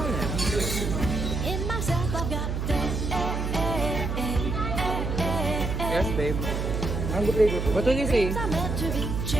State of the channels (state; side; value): noise; right; hum, 2 dB below the sound